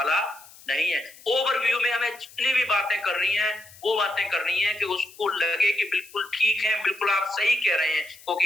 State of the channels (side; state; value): left; noise; hiss, 21 dB below the sound